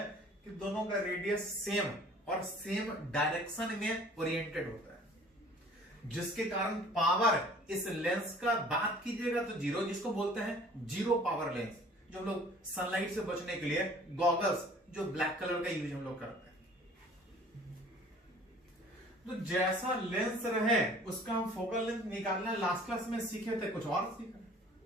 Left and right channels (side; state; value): both; normal; correlation 0.50